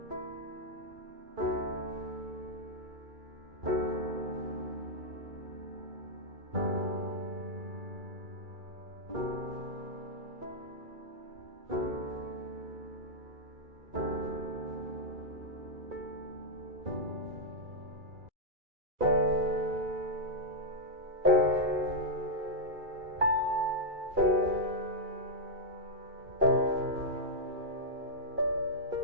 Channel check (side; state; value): left; late; 2.3 ms